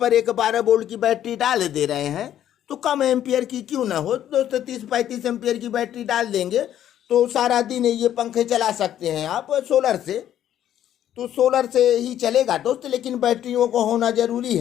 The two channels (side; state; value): right; quieter; 11.1 dB